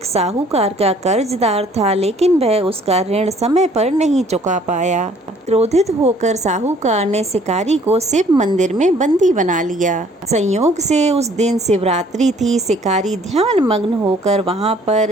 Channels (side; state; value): both; normal; correlation 0.58